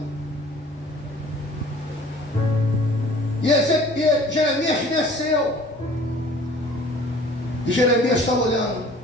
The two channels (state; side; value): normal; both; correlation 0.49